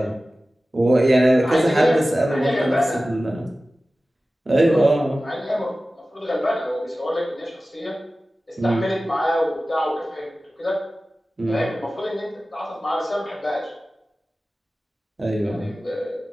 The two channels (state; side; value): normal; both; correlation 0.96